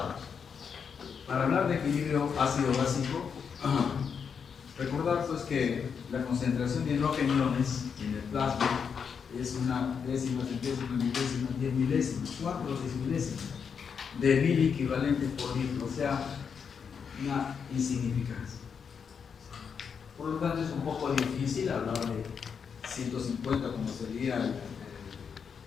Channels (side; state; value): right; quieter; 6.6 dB